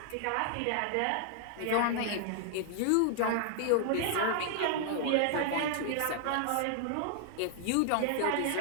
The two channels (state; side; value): different; both; correlation 0.00